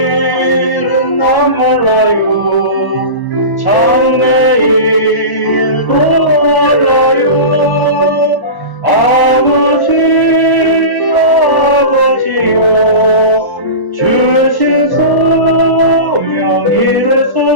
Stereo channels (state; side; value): late; right; 1.0 ms